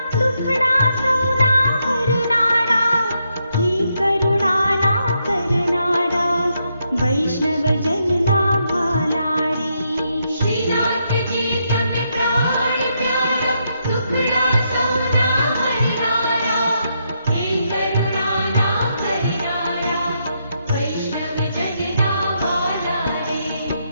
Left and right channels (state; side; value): inverted; both; correlation -0.79